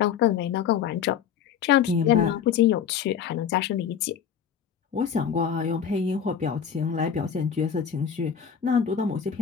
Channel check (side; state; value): right; quieter; 7.9 dB